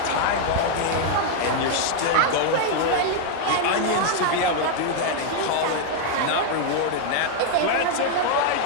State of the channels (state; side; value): different; both; correlation 0.00